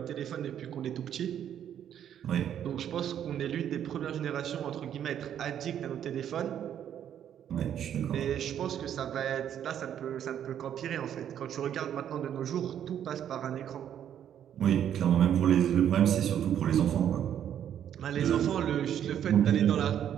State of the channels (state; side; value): quieter; left; 9.8 dB